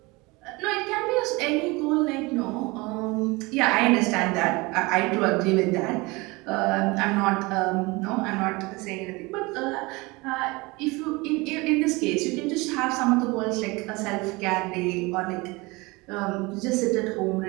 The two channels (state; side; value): quieter; left; 24.2 dB